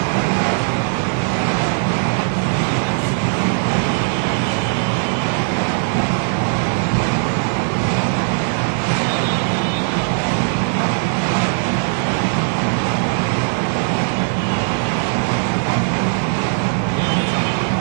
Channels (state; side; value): silent; left; digital silence